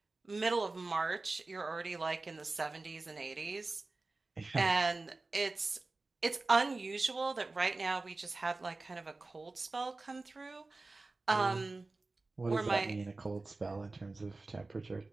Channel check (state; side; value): quieter; left; 3.4 dB